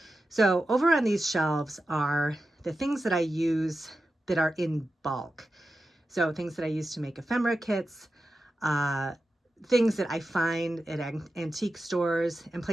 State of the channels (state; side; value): normal; both; correlation 0.91